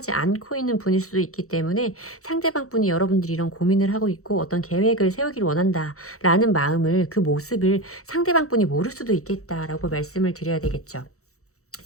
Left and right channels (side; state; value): right; late; 0.64 ms